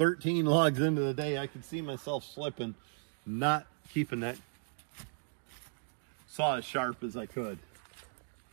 logs into the day, I could see myself slipping, not keeping that saw as sharp as I could.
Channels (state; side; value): silent; left; digital silence